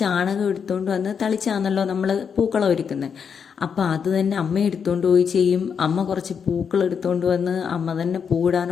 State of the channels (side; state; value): right; quieter; 6.8 dB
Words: എടുത്തുകൊണ്ട് വന്ന് തളിച്ചാണല്ലോ നമ്മൾ പൂക്കളം ഒരുക്കുന്നത്. അപ്പം അത് തന്നെ അമ്മ എടുത്തുകൊണ്ട് പോയി ചെയ്യും. അമ്മ കുറച്ച് പൂക്കൾ എടുത്തുകൊണ്ട് വന്ന് അമ്മ തന്നെ